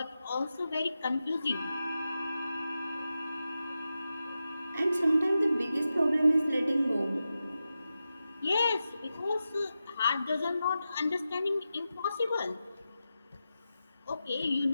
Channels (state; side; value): inverted; both; correlation -0.91